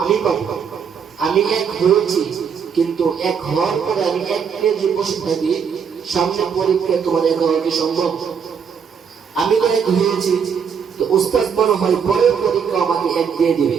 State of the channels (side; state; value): left; quieter; 6.8 dB